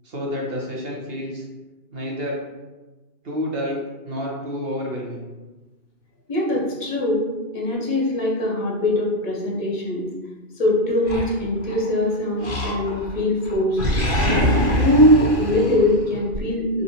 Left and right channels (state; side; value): late; left; 2.4 ms